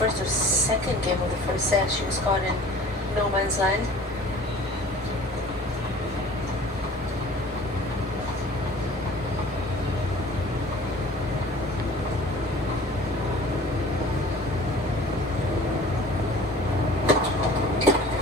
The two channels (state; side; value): normal; both; correlation 0.46